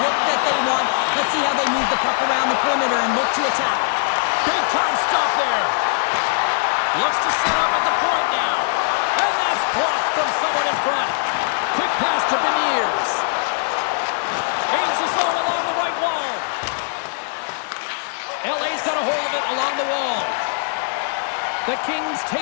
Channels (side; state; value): right; silent; 65 dB below the other